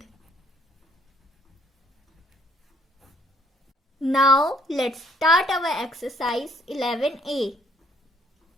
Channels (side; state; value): both; normal; correlation 0.64